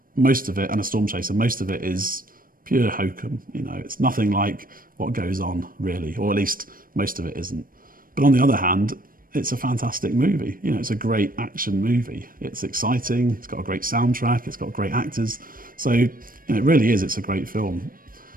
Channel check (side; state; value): left; late; 0.41 ms